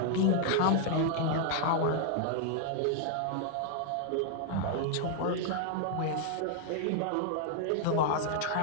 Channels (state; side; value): different; both; correlation 0.00